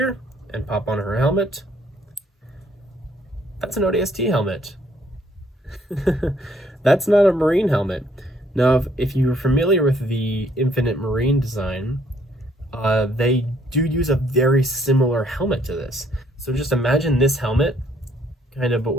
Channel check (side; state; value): both; normal; correlation 0.66